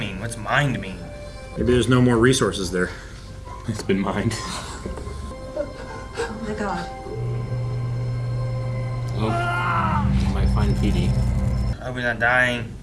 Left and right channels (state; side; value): identical; both; correlation 1.00